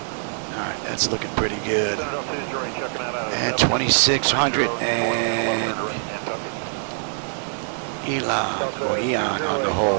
Alright, that's looking pretty good. And 2600 and Eon on the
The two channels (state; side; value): silent; left; 63 dB below the other